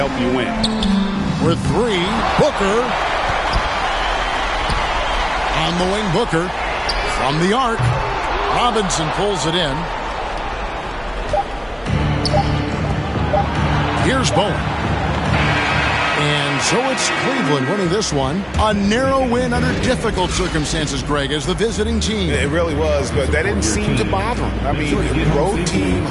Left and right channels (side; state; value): both; identical; correlation 1.00